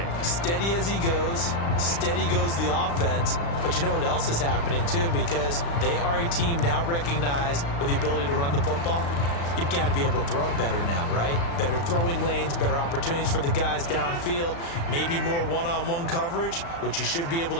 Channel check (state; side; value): late; right; 35 ms